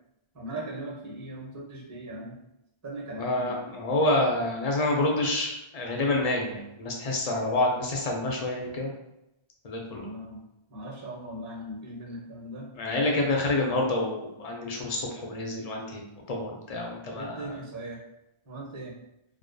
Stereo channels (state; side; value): late; right; 1.3 ms